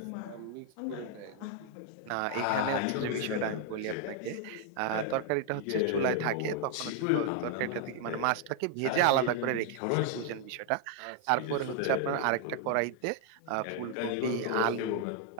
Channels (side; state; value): both; different; correlation 0.00